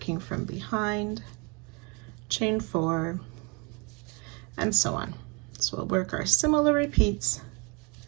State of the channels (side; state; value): left; quieter; 30.5 dB